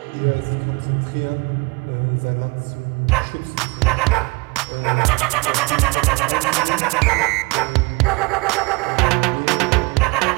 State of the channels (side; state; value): left; quieter; 27.1 dB